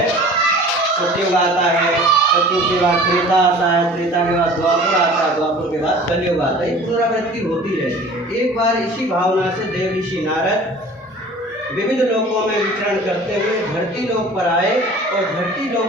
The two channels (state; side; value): normal; both; correlation 0.45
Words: सतयुग आता है, सतयुग के बाद त्रेता आता है, त्रेता के बाद द्वापर आता है, द्वापर के बाद कलयुग आता है। ये पुनरावृत्ति होती रहती है। एक बार इसी भावना से देव ऋषि नारद विविध लोकों में विचरण करते हुए धरती लोक पर आए और धरती लोक